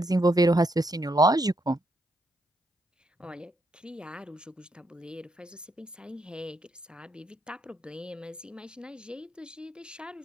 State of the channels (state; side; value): normal; both; correlation 0.77